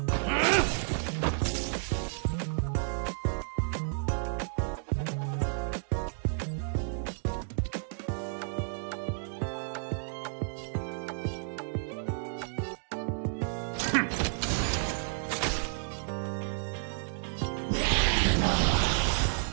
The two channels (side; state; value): left; silent; digital silence